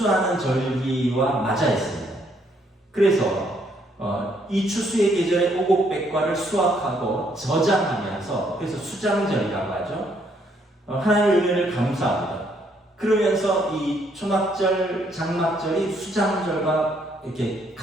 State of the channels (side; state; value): both; normal; correlation 0.70